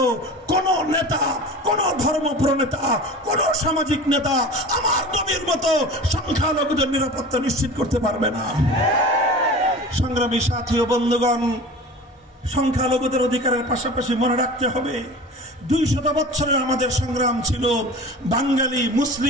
কোন নেতা, কোন ধর্ম প্রনেতা, কোন সামাজিক নেতা আমার নবীর মতো সংখ্যালঘুদের নিরাপত্তা নিশ্চিত করতে পারবে না। সংগ্রামী সাথী ও বন্ধুগণ, সংখ্যালঘুদের অধিকারের পাশাপাশি মনে রাখতে হবে 200 বছরের আমাদের সংগ্রাম ছিল বাঙালি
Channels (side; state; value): both; normal; correlation 0.36